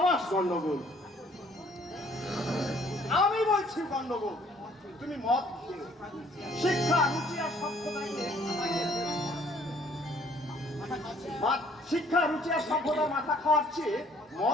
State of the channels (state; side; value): normal; both; correlation 0.60